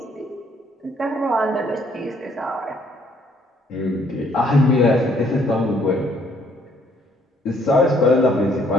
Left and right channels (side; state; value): both; normal; correlation 0.65